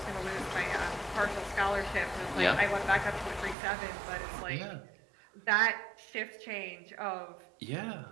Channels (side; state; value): left; drops out; at 3.6 s